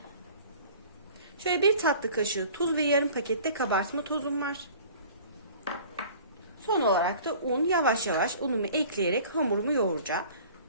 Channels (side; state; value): both; inverted; correlation -0.46